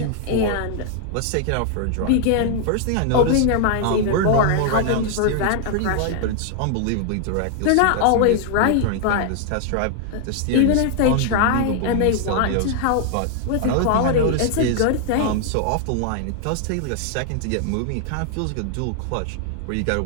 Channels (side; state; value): both; different; correlation 0.00